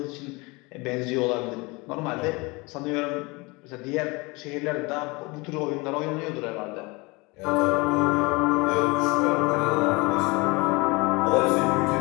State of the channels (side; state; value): right; quieter; 25.7 dB